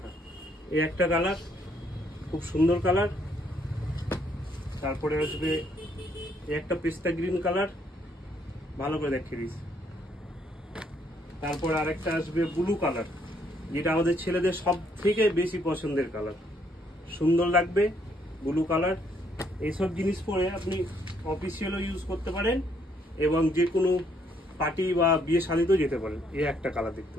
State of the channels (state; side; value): normal; both; correlation 0.70